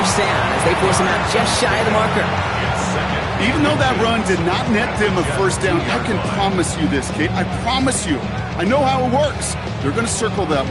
down as they force him out just shy of the marker. Even though that run did not net them a 1st down, I can promise you this, Kate. I promise you. I know how it works. They're going to circle that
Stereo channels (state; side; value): identical; both; correlation 1.00